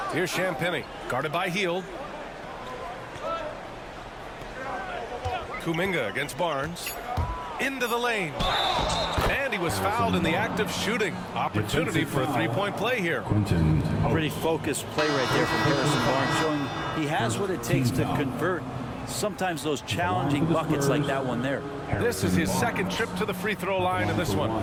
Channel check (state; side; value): identical; both; correlation 1.00